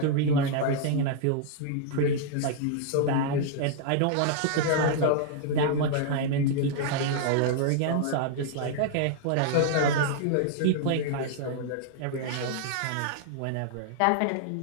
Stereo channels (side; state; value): both; different; correlation -0.01